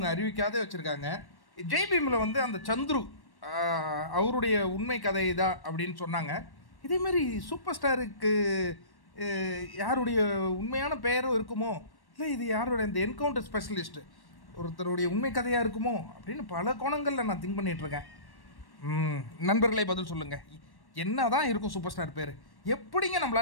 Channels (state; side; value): late; right; 1.1 ms